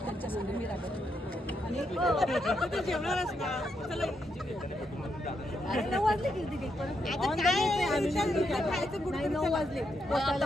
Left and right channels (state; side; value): normal; both; correlation 0.80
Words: त्यांच्या संग मी राहत जेवणार असता. अरे 9 वाजले किती परत 9 वाजले